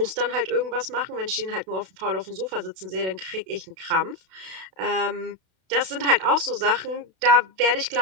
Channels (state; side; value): late; left; 32 ms